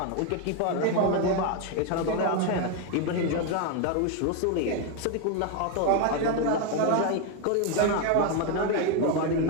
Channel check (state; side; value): different; both; correlation 0.01